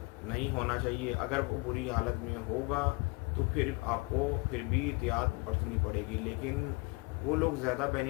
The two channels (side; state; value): right; quieter; 27.3 dB